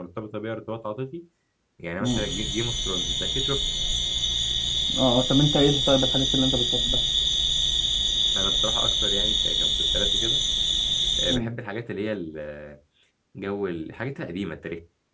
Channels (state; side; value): identical; both; correlation 1.00